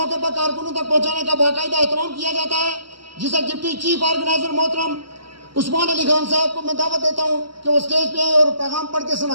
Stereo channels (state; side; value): late; left; 0.73 ms